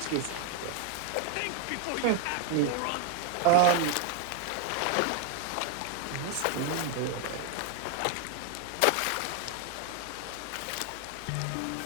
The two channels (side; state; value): both; different; correlation 0.01